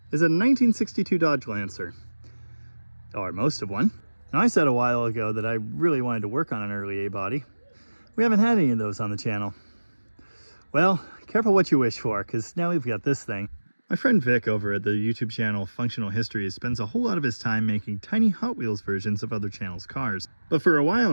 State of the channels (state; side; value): inverted; both; correlation -1.00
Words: is a 1962 Dodge Lancer. Or most of one. Now, I said a while ago that I really wanted to work on an early A body. We haven't had any of those on the channel. Well, careful what you wish for, because now we've got this thing. My friend Vic over at the YouTube channel Functional Histories spends a whole lot of his time making tiny Hot Wheels versions of other channels' cars. But for a